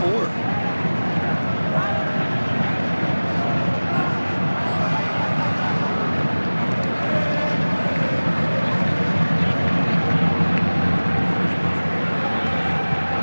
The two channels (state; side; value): inverted; both; correlation -1.00